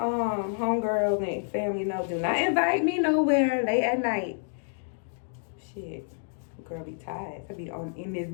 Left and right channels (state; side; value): silent; right; digital silence